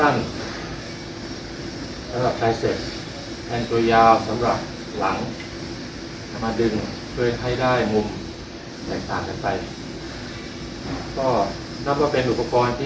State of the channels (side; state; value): both; identical; correlation 1.00